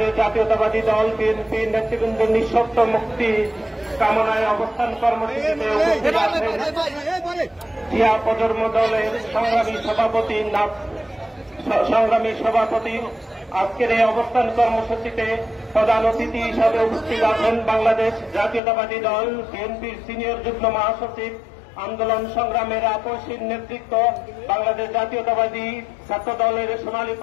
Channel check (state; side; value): drops out; right; at 18.6 s